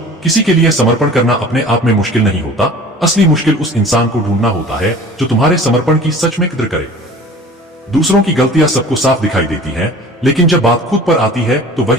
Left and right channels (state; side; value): normal; both; correlation 0.44